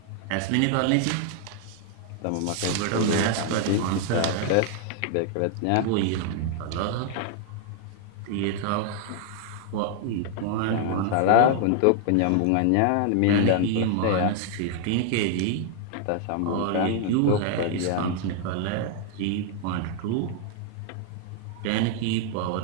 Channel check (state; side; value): different; both; correlation 0.00